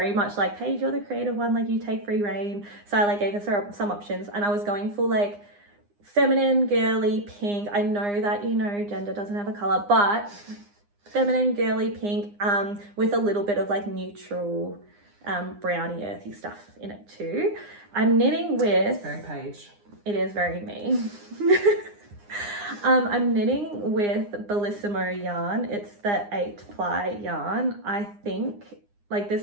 much like, Paige, you're the creative one, like you take free reign. So I like gave her some options, and I was going for like feminine, girly, pink. I know that, you know, gender doesn't have a color, but feminine, girly, pink, with a little bit of like neutral, browny, earthy stuff in it too. I'm knitting with... It's very Paige. It is very me. I'm knitting with Bellissimo yarn. It's the 8-ply yarn. I think, like,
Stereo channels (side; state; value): left; late; 9.8 ms